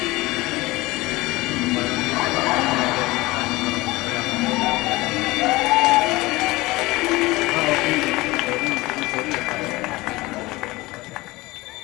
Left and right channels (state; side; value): quieter; right; 20.8 dB